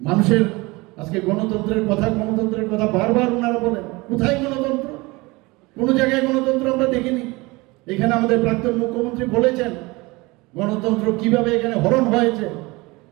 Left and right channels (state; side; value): quieter; left; 23.5 dB